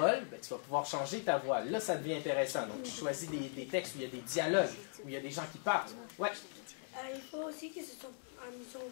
ben, tu vas pouvoir changer ta voix. Là, ça devient intéressant. Donc, tu choisis des textes où il y a des dialogues, où il y a des gens qui parlent. Ouais. Il faut aussi que ce soit amusant,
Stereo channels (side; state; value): right; silent; digital silence